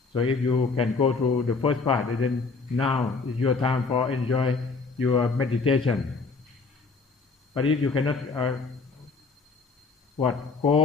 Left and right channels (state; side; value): quieter; right; 4.3 dB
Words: So if you can go through the first part, then now is your time for enjoy your meditation. But if you cannot